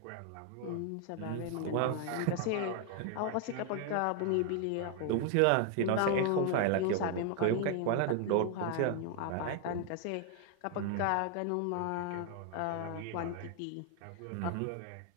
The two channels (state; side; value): different; both; correlation 0.00